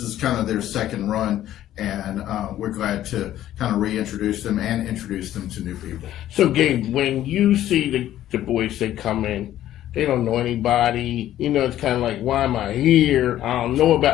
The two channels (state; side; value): quieter; right; 12.8 dB